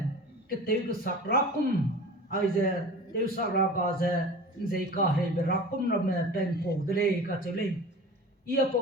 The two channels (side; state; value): both; normal; correlation 0.37